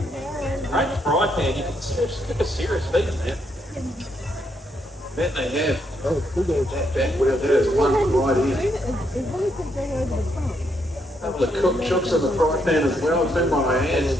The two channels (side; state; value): both; normal; correlation 0.76